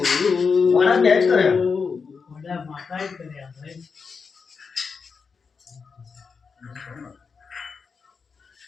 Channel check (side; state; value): right; quieter; 5.4 dB